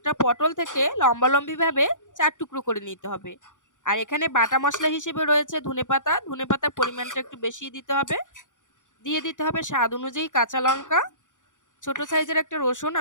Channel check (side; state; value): right; late; 0.87 ms